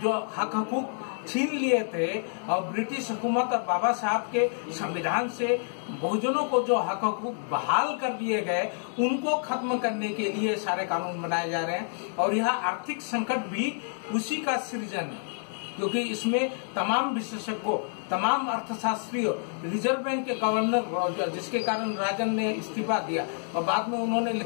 हक हकूक छीन लिए थे, और ब्रिटिश हुकूमत और बाबा साहब के संविधान से बहुजनों को जो हक हकूक बहाल कर दिए गए, उनको खत्म करने के लिए सारे कानून बनाए जा रहे हैं। और यह आर्थिक संकट भी उसी का सृजन है, क्योंकि इसमें तमाम विशेषज्ञों, तमाम अर्थशास्त्रियों, रिजर्व बैंक के गवर्नर, जिसके कारण राजन ने इस्तीफा दिया और बाद में उन्होंने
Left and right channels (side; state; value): right; silent; 59 dB below the other